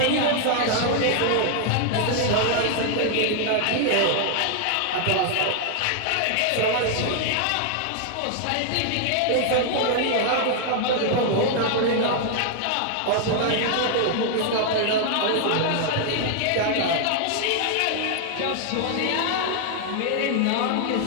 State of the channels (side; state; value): both; different; correlation 0.00